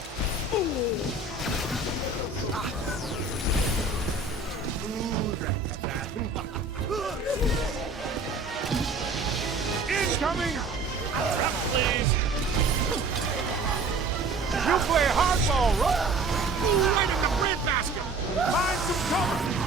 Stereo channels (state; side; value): quieter; left; 3.4 dB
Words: Incoming! Please! You play hardball, right? Right in the breadbasket! Find some cover!